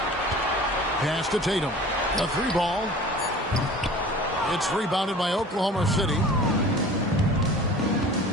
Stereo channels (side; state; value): both; normal; correlation 0.42